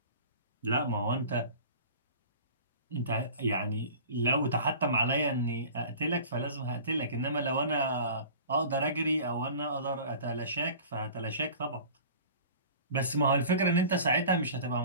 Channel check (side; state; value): both; inverted; correlation -0.41